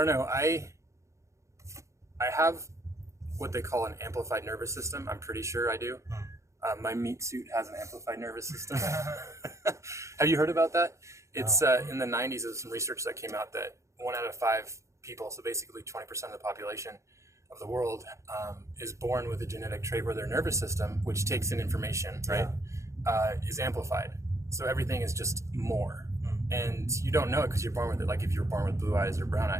know. I have what they call an amplified nervous system. I'm pretty sure I do. My meat suit has an amplified nervous system. Have you heard about that? It's in the 90s, there was some research that came out that 1 out of 5 people, so basically 20% of the population of the world, is born with a genetic trait where their nervous system, which takes in information, right, is amplified. So everything is just more. And you don't know it because you're born with it. Like if you're born with blue eyes or brown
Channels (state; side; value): late; left; 0.14 ms